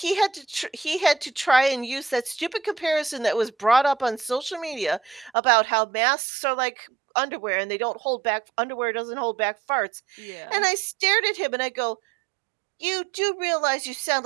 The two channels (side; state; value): left; drops out; at 5.3 s